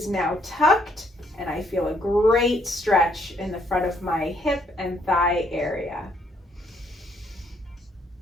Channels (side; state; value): both; normal; correlation 0.69